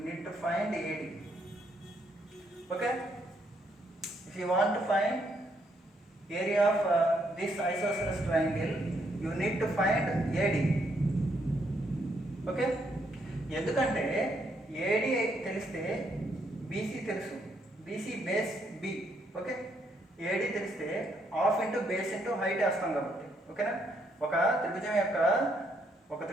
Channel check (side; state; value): both; normal; correlation 0.74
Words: need to find AD. Okay. If you want to find area of this isosceles triangle you need to find AD. Okay. ఎందుకంటే AD తెలిస్తే BC తెలుసు, BC base B. Okay. AD తెలిస్తే half into base into height వేస్తాం కాబట్టి. ఓకేనా? ఒక